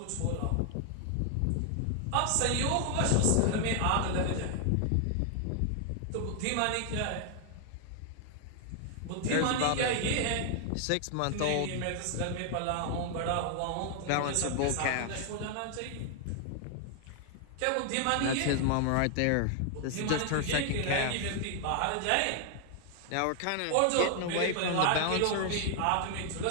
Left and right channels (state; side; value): different; both; correlation 0.00